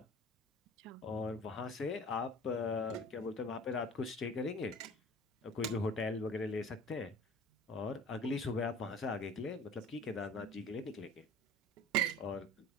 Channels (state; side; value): normal; both; correlation 0.43